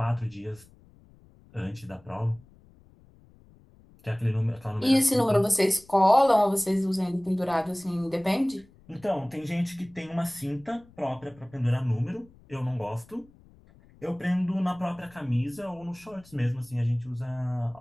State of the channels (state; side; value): noise; left; rumble, 26 dB below the sound